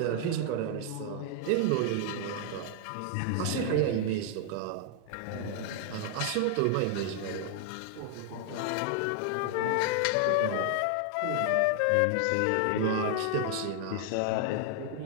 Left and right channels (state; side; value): different; both; correlation 0.00